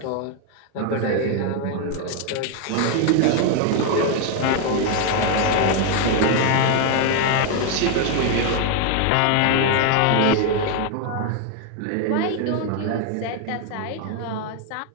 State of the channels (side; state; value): both; different; correlation 0.01